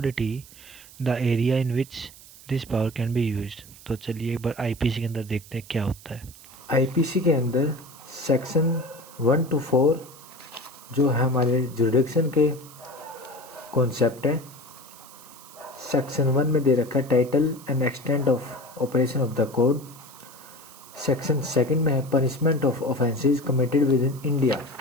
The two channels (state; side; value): noise; right; hiss, 20 dB below the sound